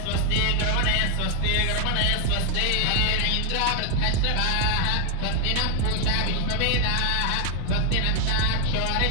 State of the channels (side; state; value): both; different; correlation 0.00